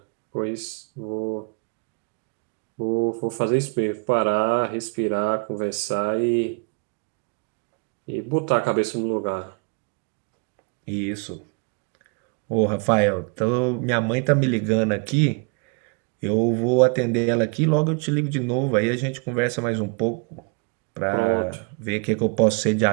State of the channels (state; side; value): quieter; left; 33.9 dB